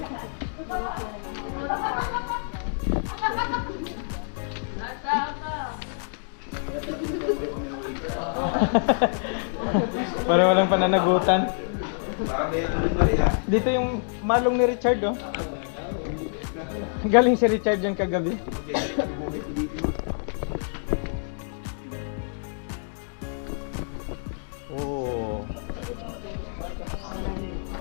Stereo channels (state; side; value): silent; right; digital silence